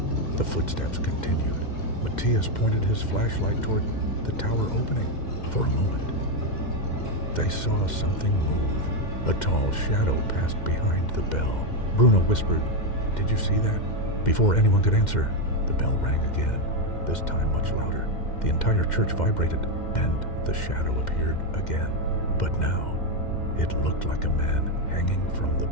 the footsteps continued. Matthias pointed his flashlight toward the tower opening. For a moment, they saw something move. A tall shadow passed behind the bell. Bruno whispered, "Did you see that?" Before anyone could answer, the bell rang again, this time much louder. The entire church vibrated, and the shadow appeared again. But now, it looked like a man hanging from the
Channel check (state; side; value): late; right; 2.1 ms